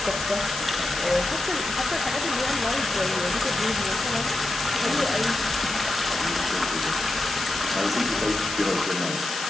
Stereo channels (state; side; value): noise; left; hiss, 6 dB below the sound